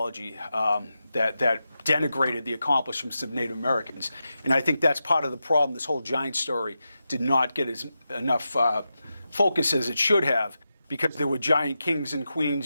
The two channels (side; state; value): both; inverted; correlation -0.90